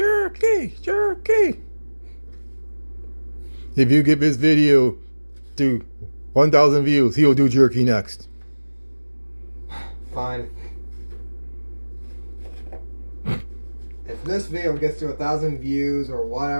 jerky. If you get this video to 1,000 views, he'll do jerky next. Fine. If this video gets to 1,000 views or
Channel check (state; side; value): inverted; both; correlation -1.00